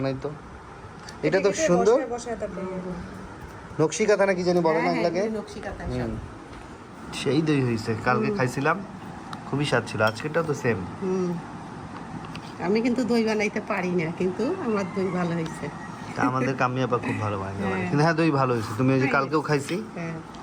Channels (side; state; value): both; identical; correlation 1.00